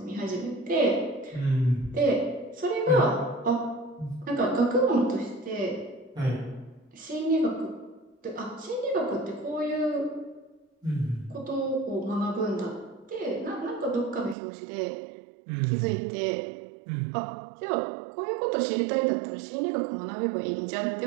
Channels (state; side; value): drops out; left; at 14.4 s